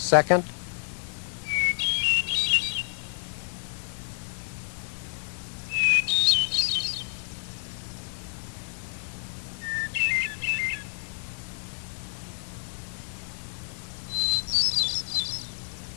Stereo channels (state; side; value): silent; right; digital silence